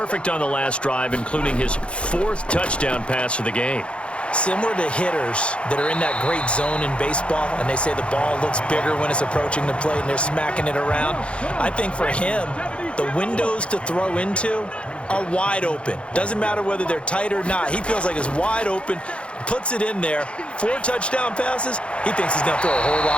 on the last drive, including his 4th touchdown pass of the game. Similar to hitters that are in that great zone in baseball, and they say the ball looks bigger when it's approaching the plate and they're smacking it around. I think for him, the windows to throw into are wide open. Doesn't matter whether they're tight or not. He feels like it's wide open, puts it in there. 4 touchdown passes. He thinks he's going to throw a whole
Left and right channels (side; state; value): right; late; 0.059 ms